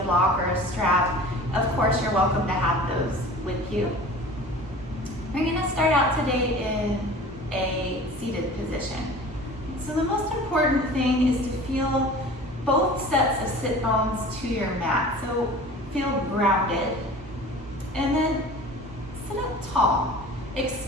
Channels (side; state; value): both; normal; correlation 0.41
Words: block, or a strap, of course you're welcome to have those with you. We're going to start out today in a seated position. So the most important thing is to feel both sets of sit bones to your mat. So feel grounded. And then sit up tall.